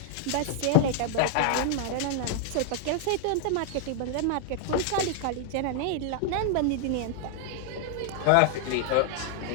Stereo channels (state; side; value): different; both; correlation 0.00